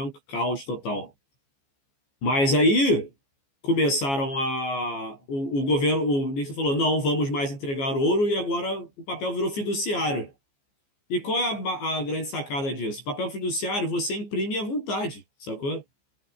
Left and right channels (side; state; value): right; late; 14 ms